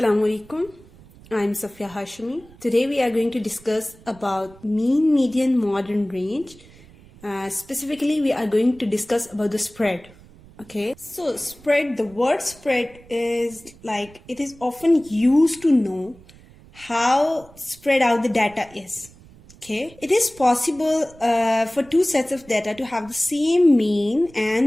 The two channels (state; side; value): noise; right; rumble, 24 dB below the sound